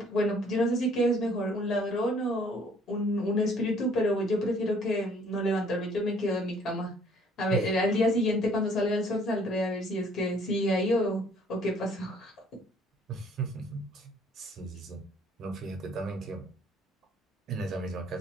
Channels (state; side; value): normal; both; correlation 0.59